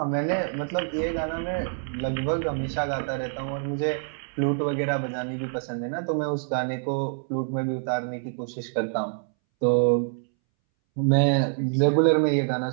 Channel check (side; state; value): left; silent; 61 dB below the other